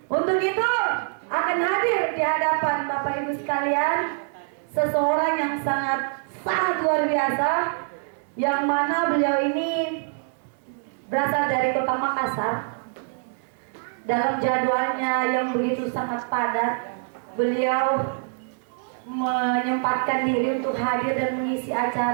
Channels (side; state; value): left; silent; digital silence